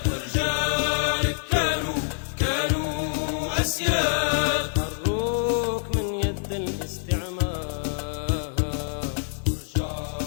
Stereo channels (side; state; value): right; silent; 56 dB below the other